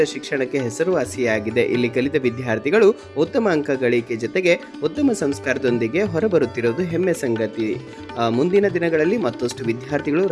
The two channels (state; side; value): identical; both; correlation 1.00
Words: ಶಿಕ್ಷಣಕ್ಕೆ ಹೆಸರುವಾಸಿಯಾಗಿದೆ. ಇಲ್ಲಿ ಕಲಿತ ವಿದ್ಯಾರ್ಥಿಗಳು ಉತ್ತಮ ಅಂಕ ಗಳಿಕೆ ಜೊತೆಗೆ ಉತ್ತಮ ಸಂಸ್ಕಾರದೊಂದಿಗೆ ಹೊರಬರುತ್ತಿರುವುದು ಹೆಮ್ಮೆ ಸಂಗತಿ. ಮುಂದಿನ ದಿನಗಳಲ್ಲಿ ಮತ್ತಷ್ಟು ವಿದ್ಯಾರ್ಥಿಗಳು